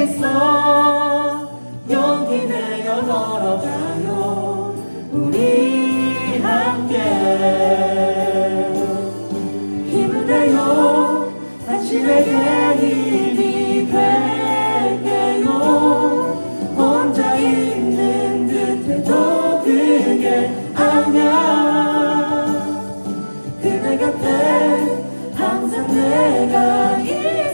용기 내어 걸어가요. 우리 함께 힘을 내요. 당신에게 힘이 될게요. 혼자 있는 듯해도 그게 아냐. 그대 곁에 항상 내가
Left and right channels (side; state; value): both; inverted; correlation -1.00